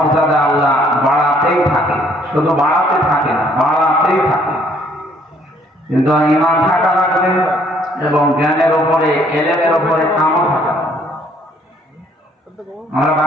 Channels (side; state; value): both; normal; correlation 0.63